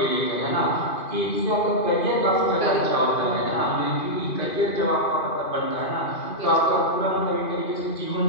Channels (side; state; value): right; late; 2.5 ms